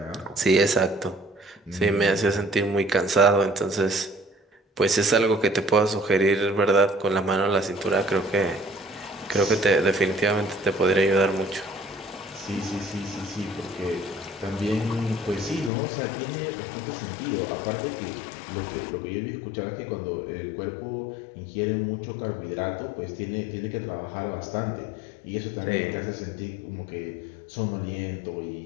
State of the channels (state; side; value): drops out; right; at 15.7 s